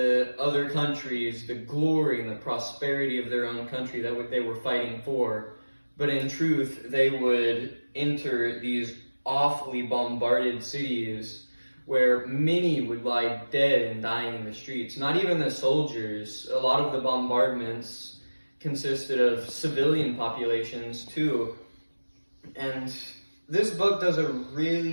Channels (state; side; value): inverted; both; correlation -1.00